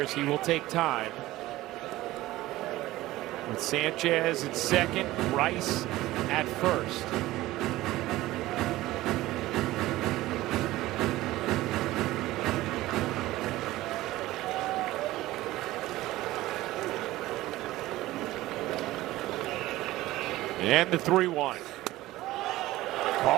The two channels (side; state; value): left; quieter; 17.0 dB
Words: as he will take time. With Sanchez at second, Rice at first. And the 3-1.